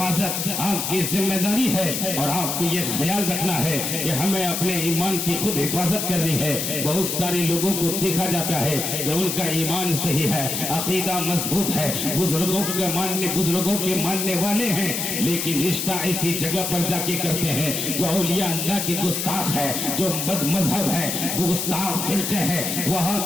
آپ کی ذمہ داری ہے، اور آپ کو یہ خیال رکھنا ہے کہ ہمیں اپنے ایمان کی خود حفاظت کرنی ہے۔ بہت سارے لوگوں کو دیکھا جاتا ہے کہ ان کا ایمان صحیح ہے، عقیدہ مضبوط ہے، بزرگوں کے ماننے والے ہیں، لیکن رشتہ ایسی جگہ پر جا کے کرتے ہیں جو اولیاء اللہ کی گستاخ ہے، جو بد مذہب ہے، گستاخ فرقے ہے، وہاں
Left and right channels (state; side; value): noise; left; hiss, 2 dB below the sound